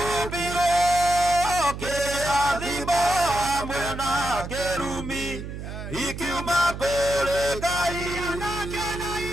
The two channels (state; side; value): noise; right; hum, 8 dB below the sound